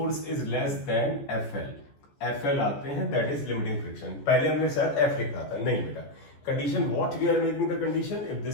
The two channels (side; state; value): right; late; 14 ms